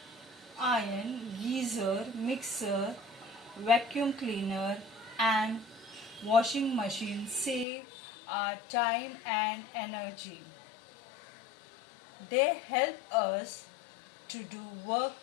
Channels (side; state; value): right; drops out; at 7.7 s